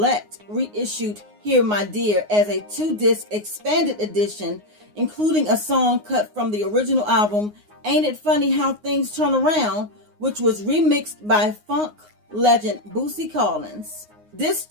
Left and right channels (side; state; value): left; late; 9.6 ms